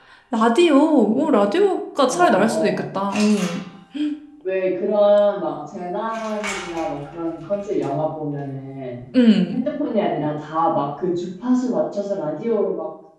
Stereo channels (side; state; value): both; identical; correlation 1.00